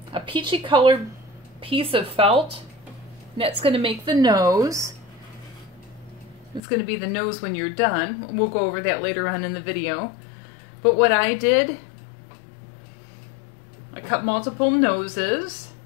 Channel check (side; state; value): right; drops out; at 6.6 s